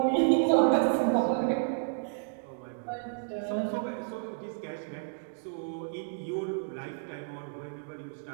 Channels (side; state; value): left; silent; digital silence